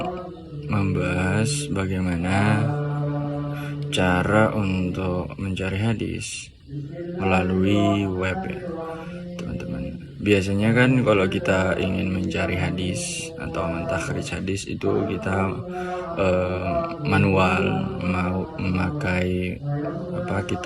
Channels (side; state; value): both; identical; correlation 1.00